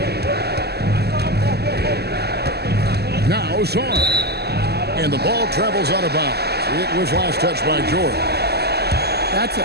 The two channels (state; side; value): late; left; 0.47 ms